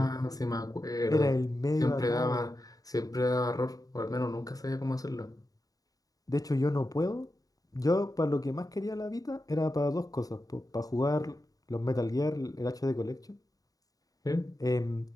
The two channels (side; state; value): right; late; 0.18 ms